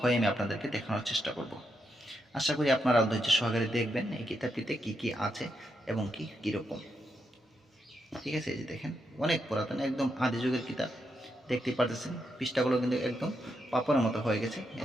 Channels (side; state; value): both; normal; correlation 0.82